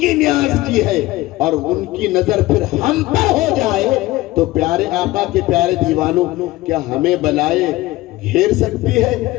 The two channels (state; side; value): quieter; right; 18.3 dB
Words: نیاز کی ہے اور ان کی نظر پھر ہم پر ہو جائے تو پیارے آقا کے پیارے دیوانوں، کیا ہمیں بلائے گھیر سکتی ہے؟